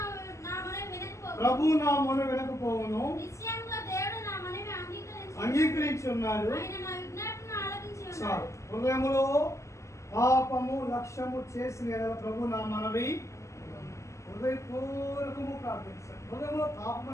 ప్రభు నా మొన వినకపోవును, అంగీకరించి ఉన్నాడు. హృదయములో పాపము లక్ష్యము చేసిన ఎడల ప్రభు నా మనవి హృదయపూర్వకము ప్రార్థించాడు. హృదయంలో పాపం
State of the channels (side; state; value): right; late; 0.14 ms